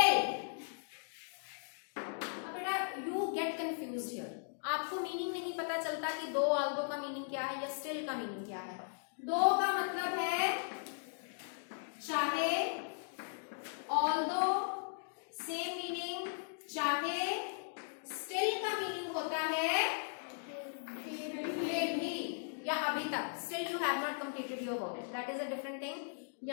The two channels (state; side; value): silent; right; digital silence